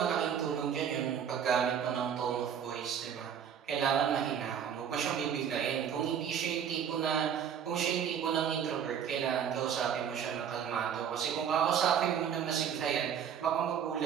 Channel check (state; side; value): quieter; left; 8.3 dB